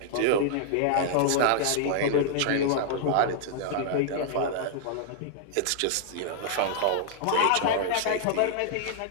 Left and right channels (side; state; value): both; different; correlation -0.01